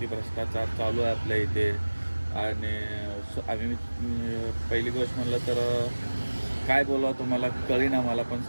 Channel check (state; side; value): inverted; both; correlation -1.00